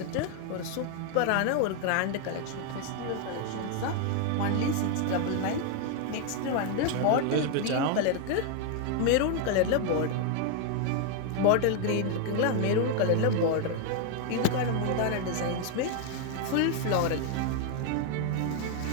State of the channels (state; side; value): different; both; correlation 0.01